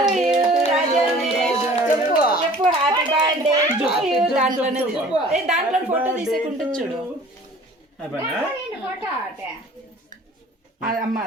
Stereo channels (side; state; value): both; normal; correlation 0.48